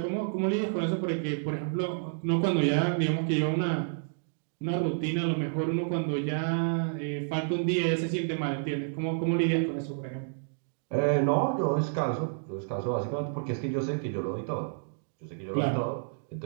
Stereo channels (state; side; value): silent; left; digital silence